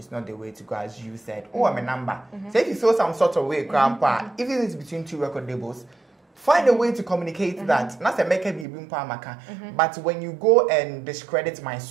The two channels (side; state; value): left; drops out; at 8.7 s